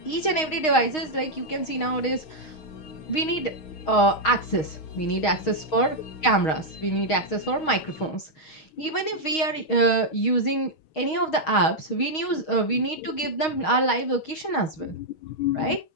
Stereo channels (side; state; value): right; late; 6.4 ms